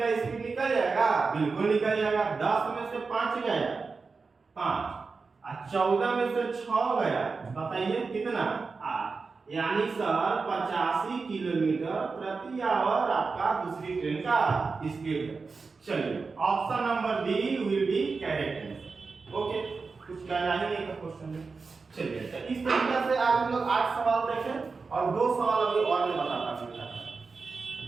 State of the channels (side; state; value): left; quieter; 4.5 dB